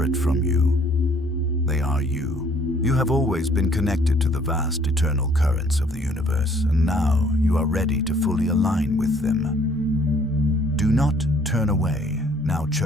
from you. They are you. You have always been connected to the vast eternal currents of the universe, and now you are ready to fully align with them. Do not turn away, now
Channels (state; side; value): normal; both; correlation 0.61